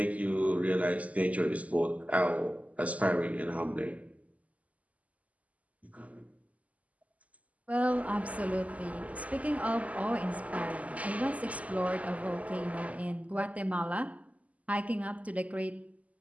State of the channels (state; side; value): late; left; 0.072 ms